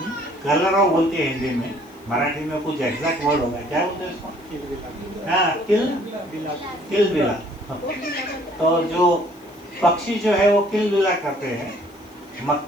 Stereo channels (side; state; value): left; noise; hiss, 29 dB below the sound